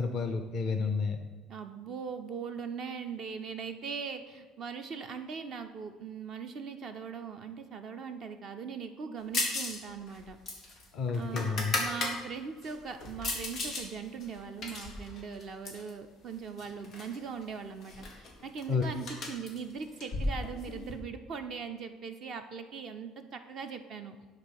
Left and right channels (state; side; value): normal; both; correlation 0.57